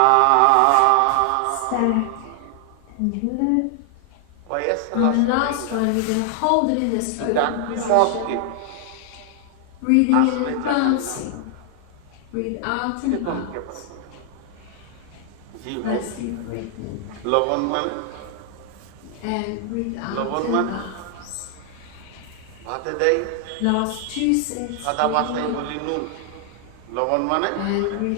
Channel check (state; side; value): different; both; correlation 0.00